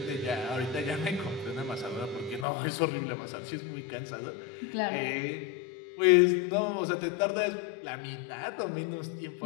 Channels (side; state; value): right; drops out; at 2.5 s